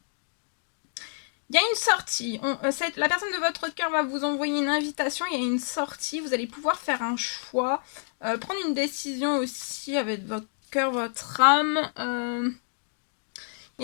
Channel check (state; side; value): silent; right; digital silence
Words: Il y a une sortie. La personne de votre cœur va vous envoyer une invitation. Il y a une sortie. Vous allez pouvoir faire un choix. Prendre une décision aussi avec votre cœur, votre âme. Il